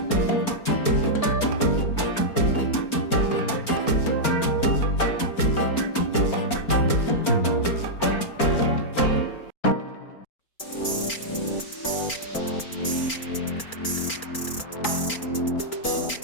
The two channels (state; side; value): late; right; 4.4 ms